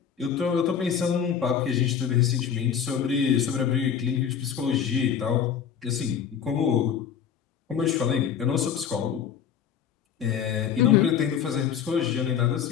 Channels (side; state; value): right; quieter; 8.1 dB